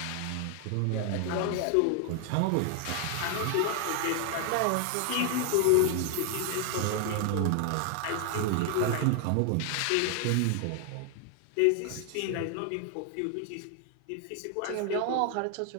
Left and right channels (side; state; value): both; different; correlation 0.00